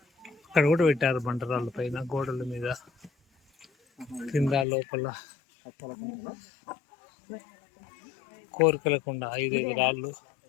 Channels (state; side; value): drops out; right; at 4.7 s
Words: అక్కడ కూడా పెట్టారు బండరాళ్ళ పైన, గోడల మీద, కింద, లోపల. కోరికలకుండా 5 రాళ్ళు